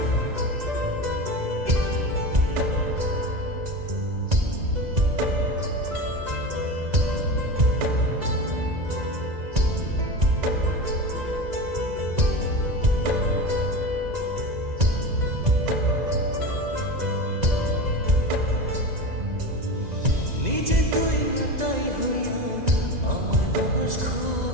নিজে তুই নাটাই হইয়া আমার বানাস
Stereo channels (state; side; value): late; left; 2.0 ms